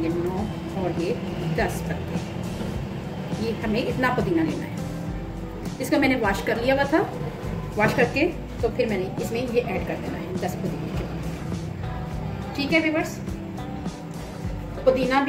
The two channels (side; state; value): both; identical; correlation 1.00